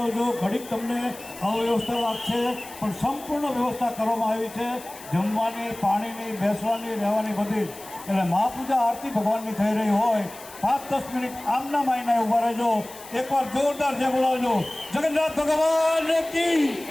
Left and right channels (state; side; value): noise; left; hiss, 17 dB below the sound